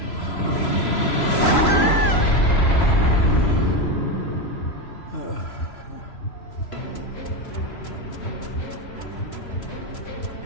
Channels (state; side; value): late; right; 3.0 ms